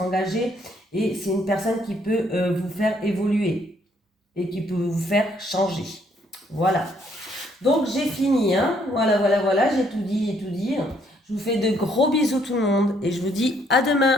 et c'est une personne qui peut vous faire évoluer et qui peut vous faire changer. Voilà. Donc j'ai fini, hein. Voilà, j'ai tout dit. Je vous fais de gros bisous tout le monde et je vous dis à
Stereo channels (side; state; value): both; normal; correlation 0.68